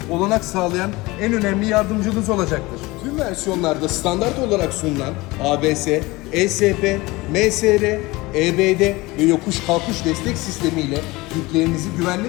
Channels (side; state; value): right; quieter; 21.7 dB